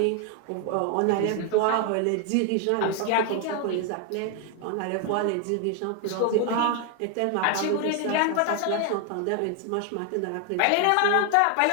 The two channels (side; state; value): both; different; correlation 0.01